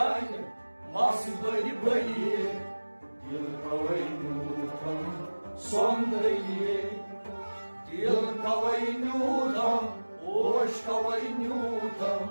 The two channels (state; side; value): inverted; both; correlation -1.00